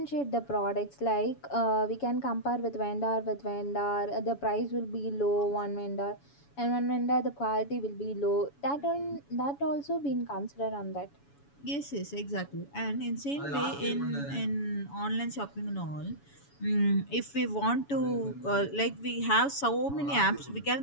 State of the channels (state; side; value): late; right; 7.1 ms